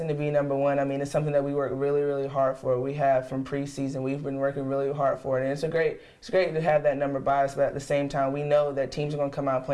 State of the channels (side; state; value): both; identical; correlation 1.00